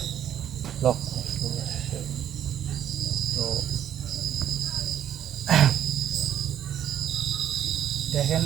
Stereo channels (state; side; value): quieter; left; 10.5 dB